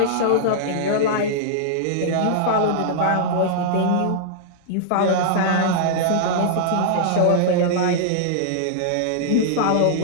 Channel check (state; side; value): different; both; correlation -0.02